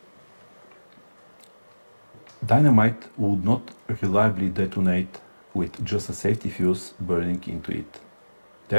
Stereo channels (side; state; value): both; inverted; correlation -1.00